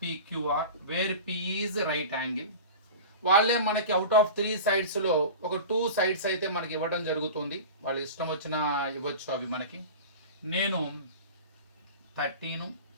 PQR where P is right angle. వాళ్ళే మనకి అవుట్ ఆఫ్ 3 సైడ్స్లో ఒక 2 సైడ్స్ అయితే మనకి ఇవ్వడం జరుగుతుంది. వాళ్ళు ఇష్టం వచ్చిన ఇవ్వచ్చు అవి మనకి. నేను 13,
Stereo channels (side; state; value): both; inverted; correlation -0.33